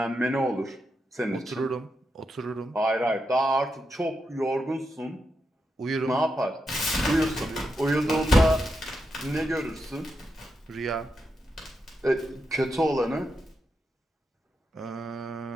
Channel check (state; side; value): normal; both; correlation 0.86